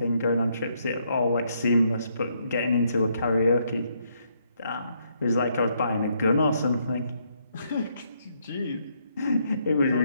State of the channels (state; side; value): inverted; both; correlation -0.74